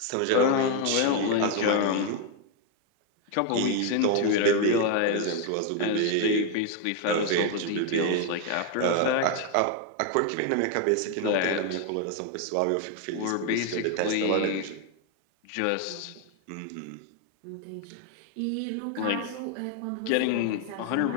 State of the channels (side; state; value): both; different; correlation 0.01